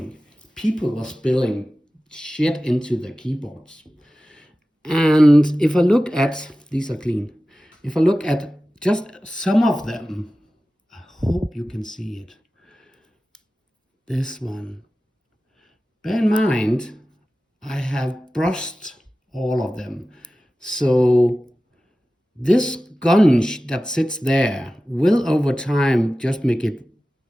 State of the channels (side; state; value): both; normal; correlation 0.95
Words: people were spilling shit into their keyboards. And if I look at, these are clean, if I look at just some of them, I hope you can see it. This one. Bear in mind, I have brushed all of them. So this gunge that sits there will over time just make it